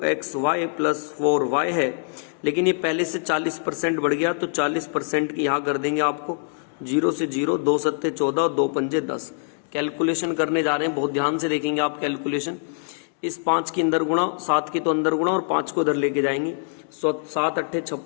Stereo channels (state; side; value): silent; right; 63 dB below the other